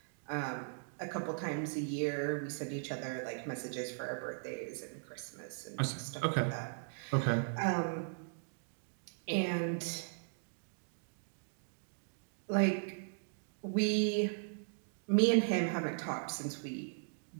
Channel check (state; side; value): silent; left; digital silence